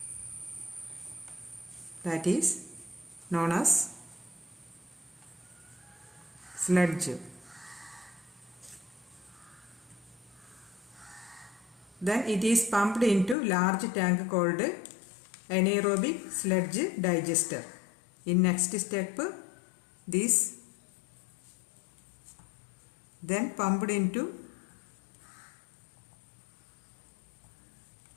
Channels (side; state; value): right; drops out; at 13.4 s